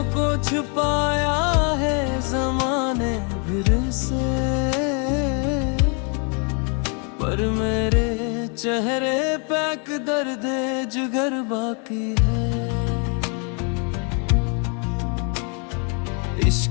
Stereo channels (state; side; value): quieter; right; 37.1 dB